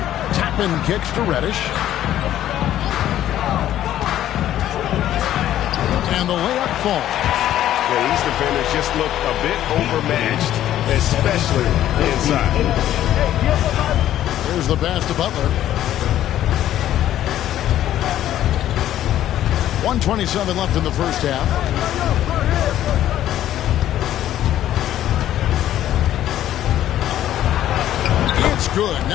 Toppin kicks to Reddish. And the layup falls. Yeah, these defenders just look a bit overmatched, especially inside. Here's the pass to Butler. 1:27 left in the first half. It's good.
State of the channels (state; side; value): quieter; right; 12.3 dB